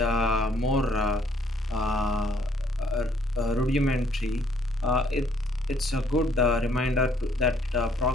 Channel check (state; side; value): normal; both; correlation 0.65